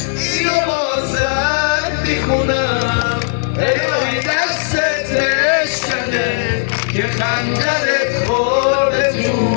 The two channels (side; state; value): right; silent; 65 dB below the other